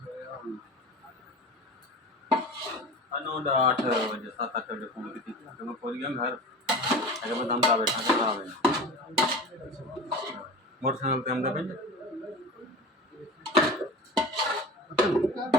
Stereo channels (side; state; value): both; normal; correlation 0.32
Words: ਸੋਇਆ ਹੁਣ अनोड 8 बजे 7-8 बजे फोन की थी तो मैं पहुंच गया घर अगर मैं दमदा बैठा था खराब है मोटरसाइकिल पे हमदा पे